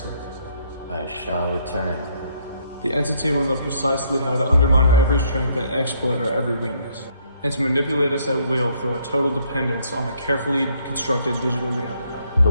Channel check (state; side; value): inverted; both; correlation -0.67